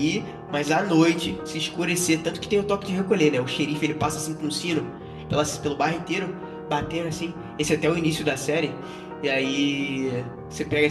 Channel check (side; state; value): both; identical; correlation 1.00